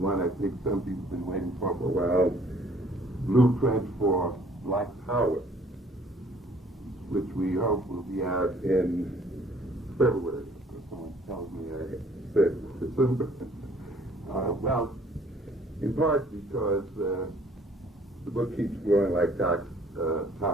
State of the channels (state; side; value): normal; both; correlation 0.58